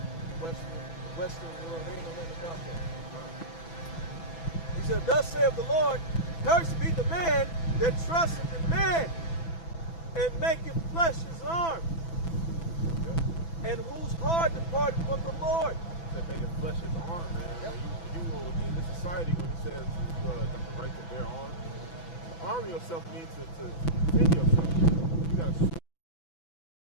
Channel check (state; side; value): late; right; 6.0 ms